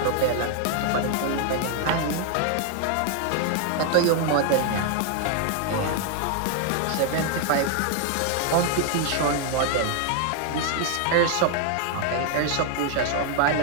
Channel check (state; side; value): different; both; correlation 0.00